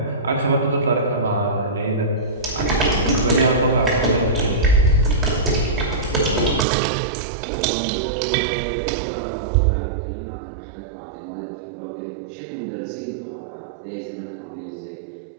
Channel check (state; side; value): drops out; left; at 6.7 s